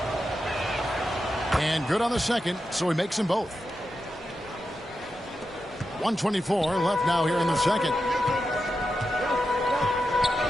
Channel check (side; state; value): both; normal; correlation 0.89